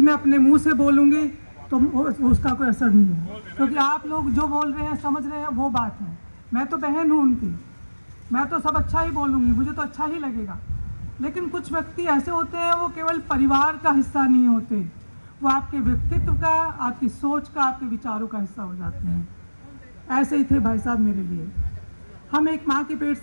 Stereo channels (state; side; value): inverted; both; correlation -1.00